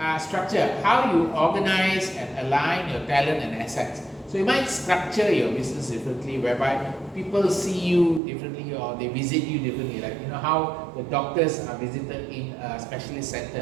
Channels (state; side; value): drops out; left; at 8.2 s